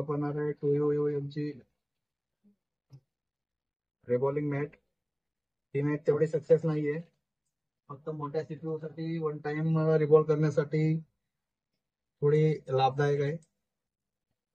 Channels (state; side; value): identical; both; correlation 1.00